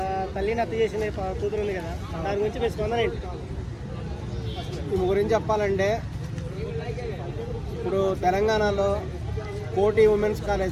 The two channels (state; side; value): identical; both; correlation 1.00